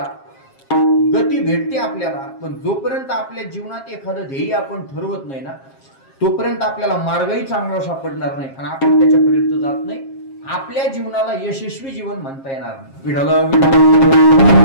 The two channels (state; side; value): late; right; 7.4 ms